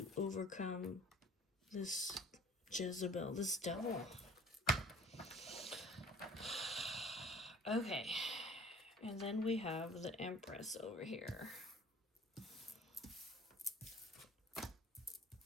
overcome this Jezebel, this devil. Okay. And then we have the Empress over here.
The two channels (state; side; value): normal; both; correlation 0.49